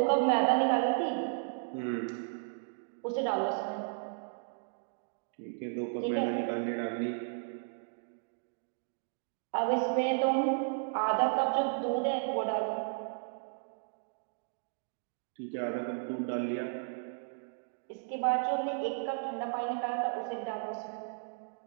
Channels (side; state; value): left; silent; digital silence